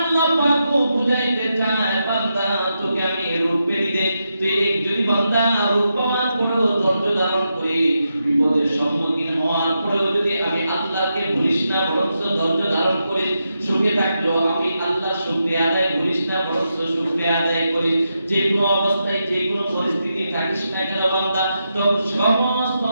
পাক বুঝাইতে চায় বান্দা তোকে আমি রূপ দিতে, তুই যদি বান্দা রূপ পাওয়ার পরেও ধৈর্য ধারণ করে বিপদের সম্মুখীন হওয়ার পরেও যদি আমি আল্লাহকে ভুলিস না, বরং ধৈর্য ধারণ করে সুখে থাকলেও আমি আল্লাহর শুকরিয়া আদায় করিস না, বরং শুকরিয়া আদায় করিস, যে কোনো অবস্থায় যে কোনো পরিস্থিতি থাকিস না কেন বান্দা, তো সমস্ত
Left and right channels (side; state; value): both; inverted; correlation -0.86